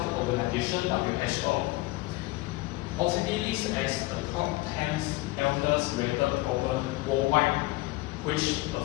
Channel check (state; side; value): quieter; right; 20.6 dB